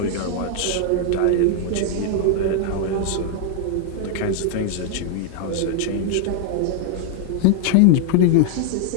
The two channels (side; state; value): both; different; correlation 0.00